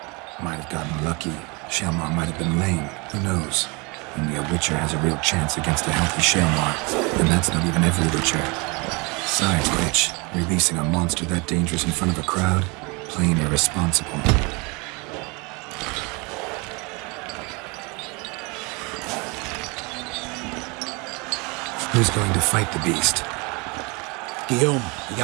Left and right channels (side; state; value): left; quieter; 28.7 dB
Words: Might have gotten lucky. Shaelamaar might have been lame. Who knows? Only a witcher has a real chance against a healthy Shaelamaar. And that's not even every witcher. Besides which, releasing a monster that dangerous in front of a crowd? Plain irresponsible. Who's going to fight the beast? Guillaume, the